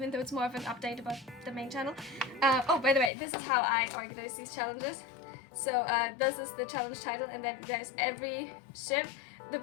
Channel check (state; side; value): drops out; right; at 3.1 s